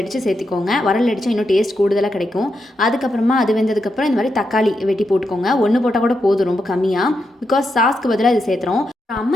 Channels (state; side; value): normal; both; correlation 0.84